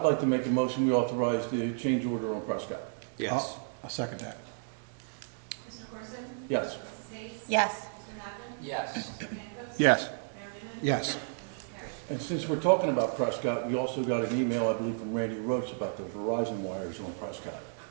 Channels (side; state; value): left; silent; digital silence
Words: like to make a motion, we authorize the change order on Prescott. Yes. I'll second that. Mr. Corson? Yes. Mrs. Hayes? Yes. Mr. Napoli? Yes. Mr. Pankos? Yes. Mayor Newman? Yes. Motion carries. And since we're talking about Prescott, we also got an email, I believe, from Randy Roach about the Verizon wires on Prescott.